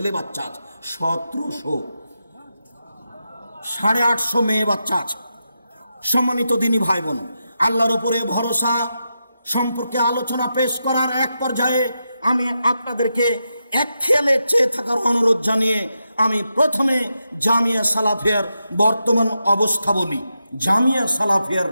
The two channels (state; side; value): inverted; both; correlation -0.87